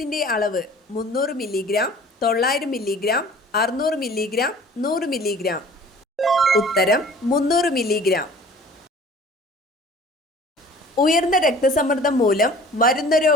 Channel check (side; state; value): both; normal; correlation 0.47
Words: അളവ്: 300 മില്ലിഗ്രാം, 900 മില്ലിഗ്രാം, 600 മില്ലിഗ്രാം, 100 മില്ലിഗ്രാം. ഉത്തരം 300 മില്ലിഗ്രാം. ഉയർന്ന രക്തസമ്മർദ്ദം മൂലം വരുന്ന